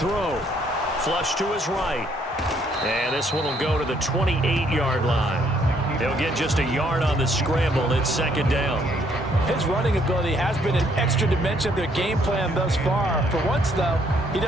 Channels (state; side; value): normal; both; correlation 0.68